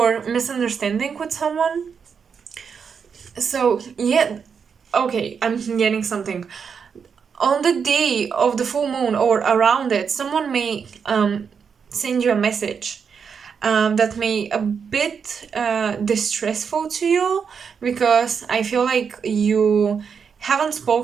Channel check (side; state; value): left; quieter; 6.4 dB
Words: misunderstanding with someone. So, yeah, okay, I'm getting something. On the day of the full moon or around it, someone may send you a message that may a bit distressful to you, because I feel like you haven't